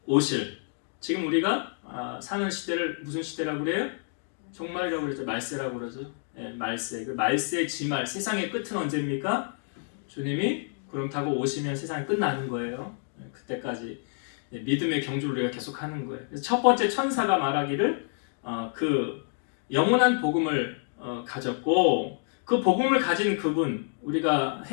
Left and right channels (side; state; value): right; silent; 57 dB below the other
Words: 오실, 지금 우리가 사는 시대를 무슨 시대라고 그래요? 종말이라고 그러죠. 말세라고 그러죠. 말세. 그 말세 지말, 세상의 끝은 언제입니까? 주님이 구름 타고 오시면 세상이 끝나는 거예요. 그때까지 믿음의 경주를 우리가 계속 하는 거예요. 그래서 첫 번째 천사가 말하기를 그 영원한 복음을 가졌고, 그 복음을 가진 그분, 우리가